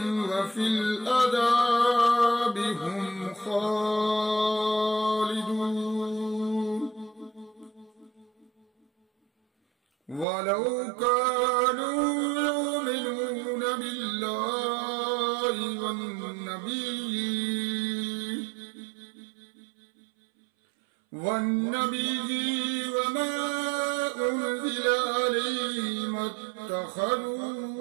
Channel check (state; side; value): drops out; left; at 10.2 s